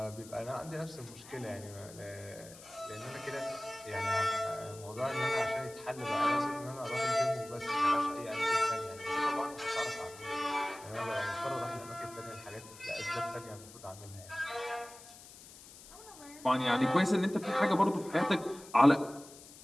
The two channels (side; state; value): left; noise; hiss, 18 dB below the sound